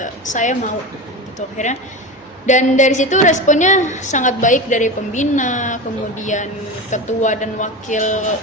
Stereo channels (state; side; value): normal; both; correlation 0.24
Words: saya mau gitu akhirnya. Dan dari situ responnya sangat baik dari pembina, kemudian ketua dan wakil